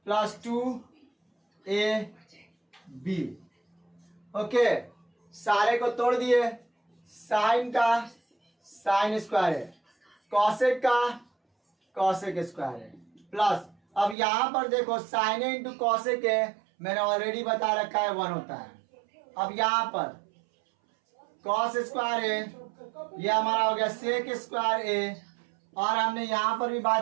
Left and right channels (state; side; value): drops out; left; at 14.2 s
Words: plus 2ab, okay, सारे को तोड़ दिए। साइन का साइन स्क्वायर है, कॉसेक का कॉसेक स्क्वायर है, प्लस अब यहां पर देखो साइन ए इंटू कॉसेक है, मैंने ऑलरेडी बता रखा है 1 होता है। अब यहां पर कॉस स्क्वायर है, ये हमारा हो गया सेक स्क्वायर ए, और हमने यहां पर भी